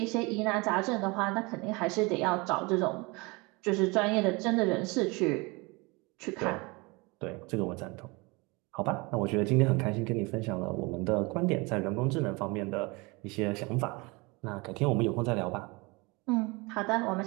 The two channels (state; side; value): quieter; left; 26.4 dB